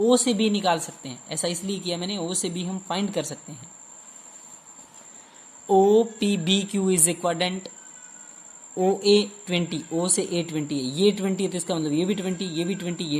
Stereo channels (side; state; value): both; identical; correlation 1.00